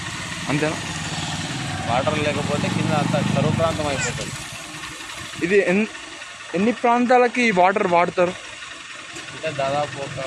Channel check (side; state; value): both; identical; correlation 1.00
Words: అంతేనా? వాటర్ లేకపోతే కింద అంతా కరువు ప్రాంతం అయిపోతుంది. ఇది ఎన్ని ప్రాంతాలకి ఈ వాటర్ వాడతారు? అంటే దాదాపు ఒక